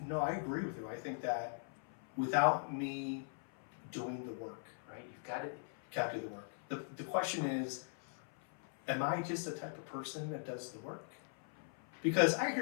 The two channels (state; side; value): silent; right; 51 dB below the other